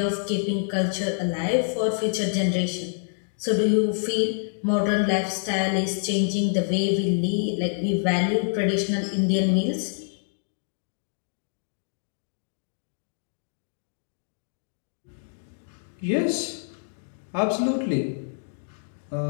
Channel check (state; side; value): silent; right; digital silence